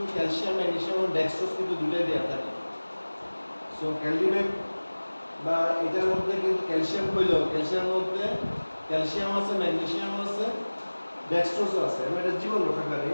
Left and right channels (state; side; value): inverted; both; correlation -1.00